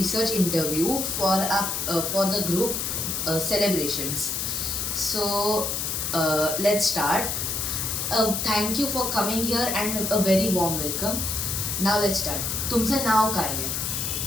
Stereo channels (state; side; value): noise; left; hiss, 1 dB below the sound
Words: interview for the group celebrations. So let's start. Thank you for coming here and a very warm welcome. Now let's start. तुमचं नाव काय आहे